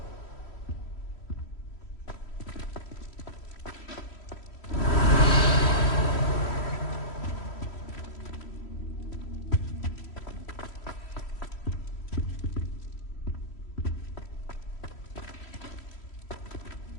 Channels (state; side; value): late; right; 3.1 ms